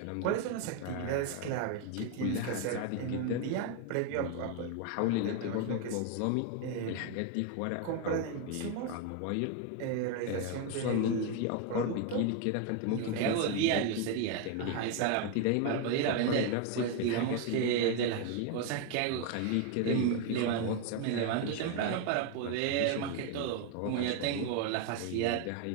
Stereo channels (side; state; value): both; different; correlation 0.01